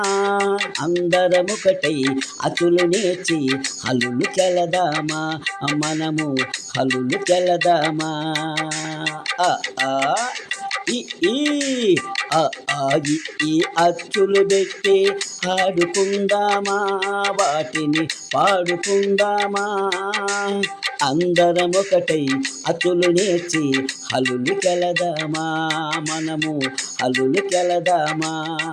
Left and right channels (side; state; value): both; identical; correlation 1.00